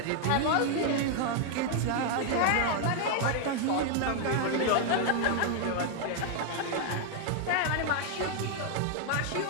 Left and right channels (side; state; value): both; different; correlation 0.00